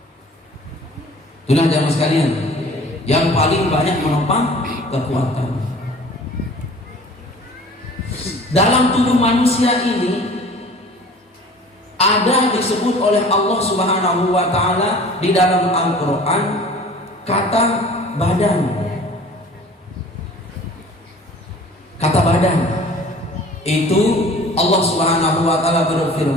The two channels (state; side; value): normal; both; correlation 0.46